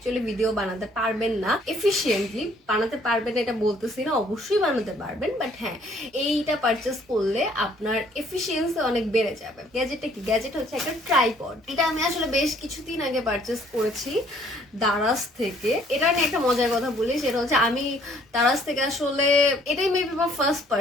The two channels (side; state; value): both; normal; correlation 0.61